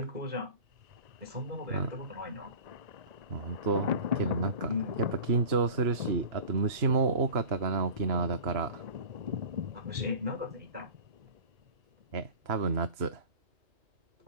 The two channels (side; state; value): left; late; 2.9 ms